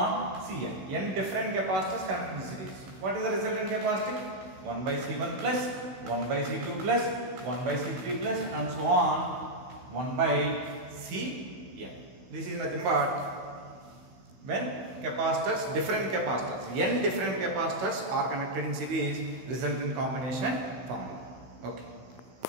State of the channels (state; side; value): late; left; 16 ms